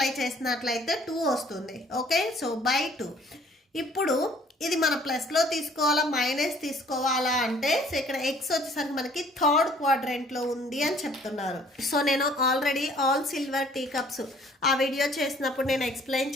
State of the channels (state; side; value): normal; both; correlation 0.57